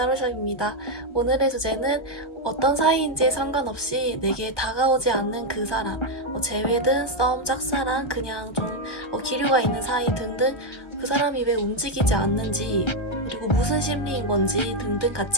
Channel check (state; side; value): late; right; 1.3 ms